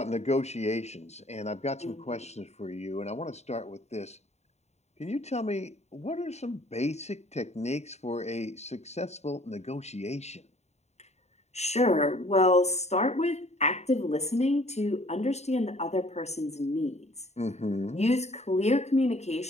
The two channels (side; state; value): right; late; 0.32 ms